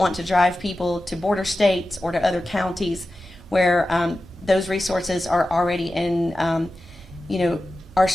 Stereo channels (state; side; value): normal; both; correlation 0.94